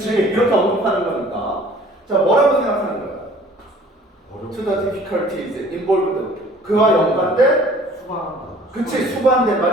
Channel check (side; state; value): both; normal; correlation 0.52